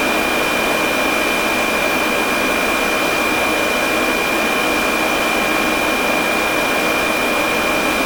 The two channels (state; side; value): identical; both; correlation 1.00